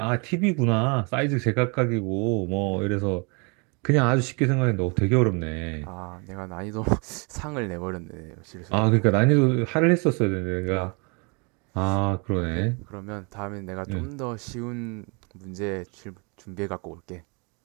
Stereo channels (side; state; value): left; quieter; 32.7 dB